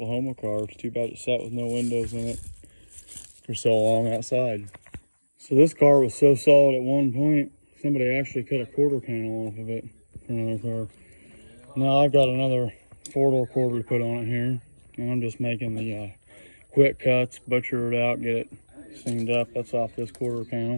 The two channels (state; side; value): inverted; both; correlation -1.00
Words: car. It's too bad it sat with no windows in it for so long outside. So this car was so solid at one point, somebody actually cut a quarter panel off of it for another car. Now I've got another 4-door quarter to put on it here. And I'm just making the quick cuts, butcher it out, get it seamed up. That's off this quarter